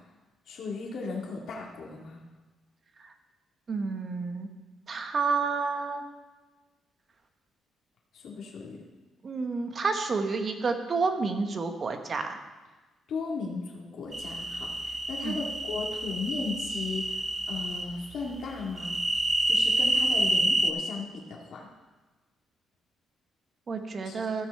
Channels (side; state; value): both; normal; correlation 0.86